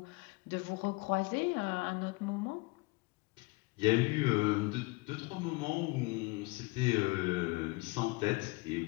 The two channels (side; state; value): right; quieter; 24.9 dB